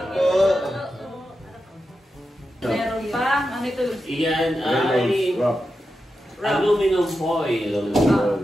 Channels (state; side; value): normal; both; correlation 0.89